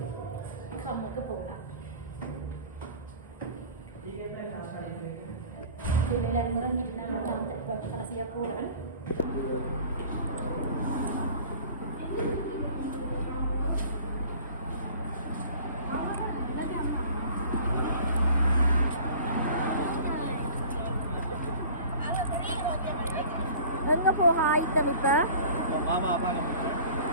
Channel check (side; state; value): both; inverted; correlation -0.45